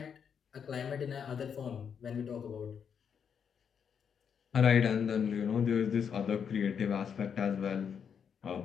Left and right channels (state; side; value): quieter; right; 7.3 dB